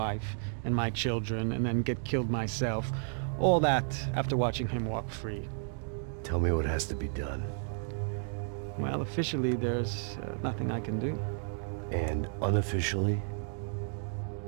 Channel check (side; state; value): left; silent; 56 dB below the other